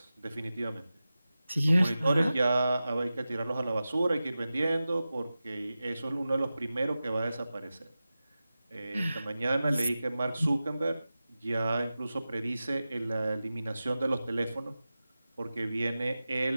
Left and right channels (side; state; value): both; inverted; correlation -0.95